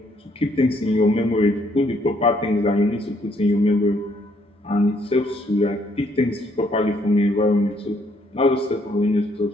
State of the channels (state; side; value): normal; both; correlation 0.69